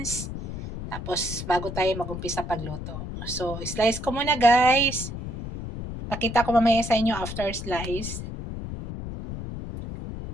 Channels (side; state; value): left; noise; rumble, 7 dB below the sound